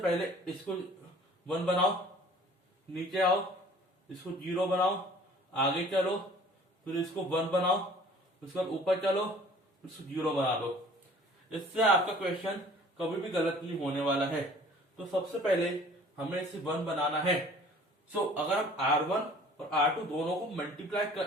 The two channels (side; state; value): both; normal; correlation 0.51